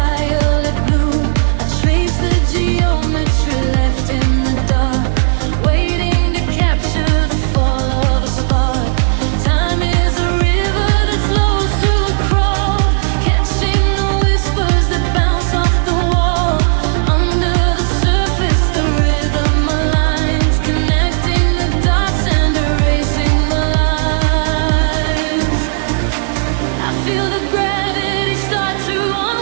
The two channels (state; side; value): silent; left; digital silence